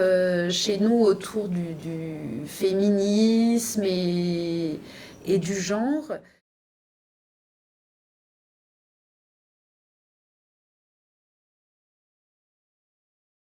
chez nous autour du féminisme et du genre.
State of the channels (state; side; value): identical; both; correlation 1.00